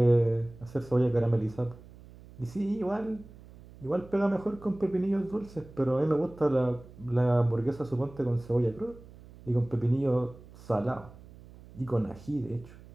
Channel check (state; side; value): noise; right; hum, 20 dB below the sound